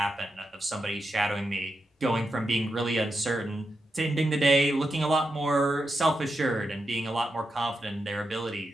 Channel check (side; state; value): both; normal; correlation 0.87